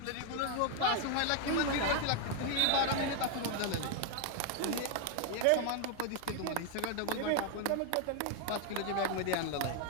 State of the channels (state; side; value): different; both; correlation 0.00